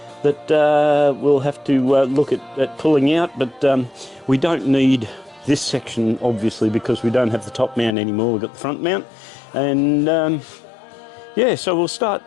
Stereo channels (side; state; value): right; drops out; at 8.0 s